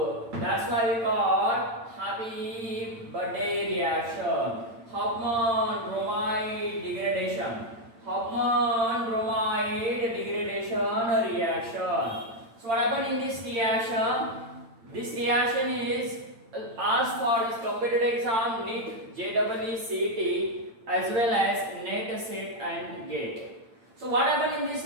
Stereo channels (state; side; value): late; left; 8.8 ms